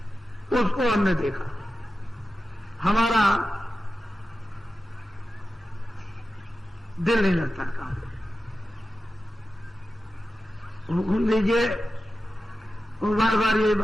उसको हमने देखा, हमारा दिल नहीं लगता काम। हुक्म दीजिए, वो बार बार यही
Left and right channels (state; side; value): normal; both; correlation 0.93